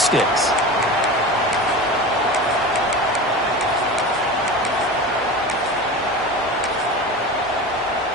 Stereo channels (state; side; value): normal; both; correlation 0.30